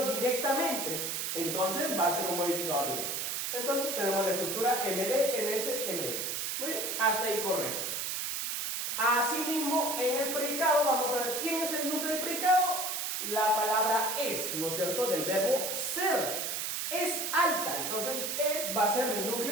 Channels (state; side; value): noise; right; hiss, 2 dB below the sound